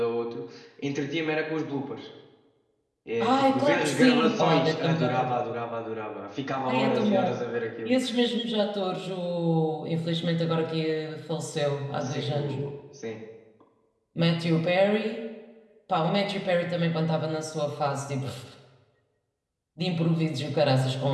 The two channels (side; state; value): both; identical; correlation 1.00